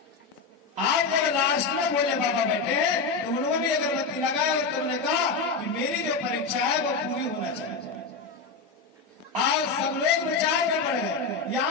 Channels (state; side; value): quieter; right; 4.5 dB